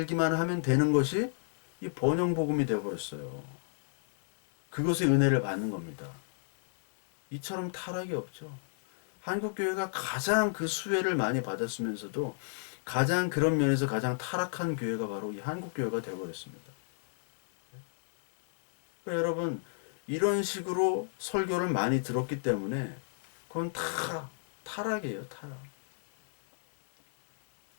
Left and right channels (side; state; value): right; silent; 57 dB below the other